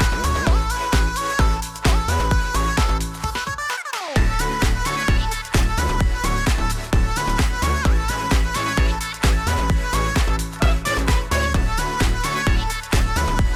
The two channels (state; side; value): identical; both; correlation 1.00